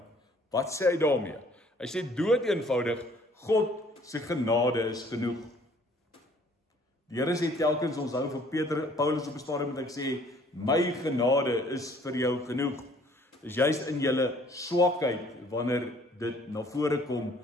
Wat sê hy daarmee? Hy sê dood eenvoudig, God se genade is genoeg. Die Here sê telkens, ons hou vir Paulus op 'n stadium met ek sê, my genade is vir jou genoeg. Dis juist in julle swakheid wanneer dit na vore kom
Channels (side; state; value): both; normal; correlation 0.58